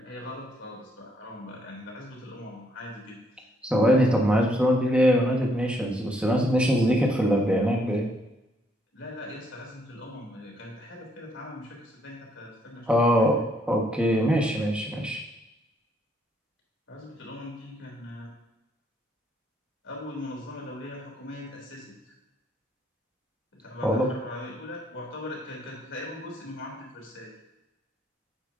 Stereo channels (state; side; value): normal; both; correlation 0.71